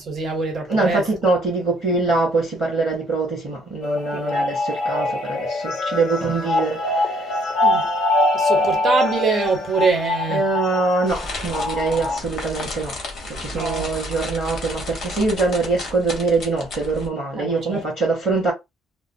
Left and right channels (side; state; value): both; normal; correlation 0.64